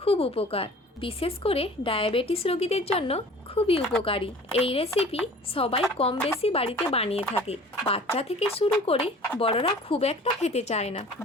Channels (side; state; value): both; normal; correlation 0.46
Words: খুব উপকার, বিশেষ করে ডায়াবেটিস রোগীদের জন্য খুবই উপকারী। এই রেসিপি সবাই কম বেশি বাড়িতে বানিয়ে থাকে, বাচ্চা থেকে শুরু করে বড়রা খুব একটা খেতে চায় না।